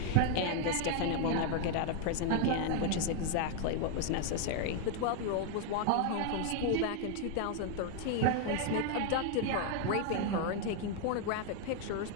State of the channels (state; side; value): different; both; correlation 0.00